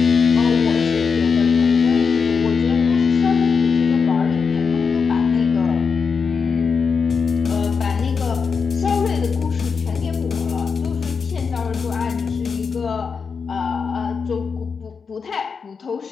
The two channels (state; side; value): quieter; right; 5.6 dB